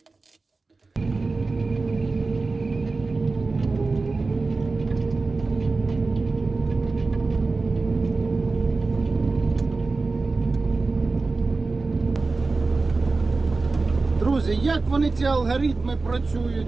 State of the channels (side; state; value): left; quieter; 3.8 dB